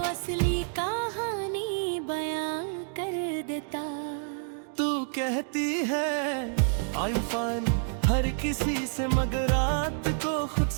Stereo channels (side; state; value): left; silent; digital silence